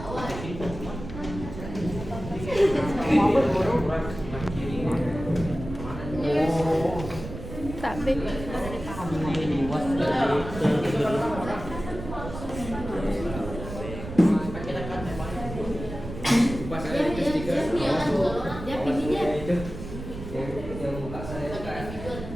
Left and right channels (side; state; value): right; noise; rumble, 10 dB below the sound